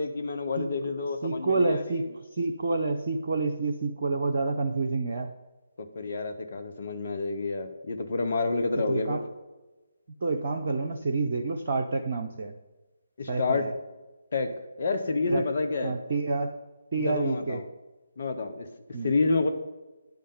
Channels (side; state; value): both; inverted; correlation -0.80